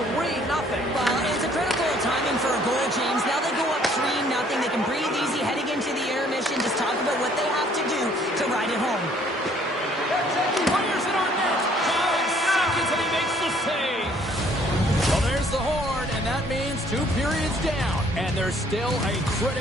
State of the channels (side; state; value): both; normal; correlation 0.61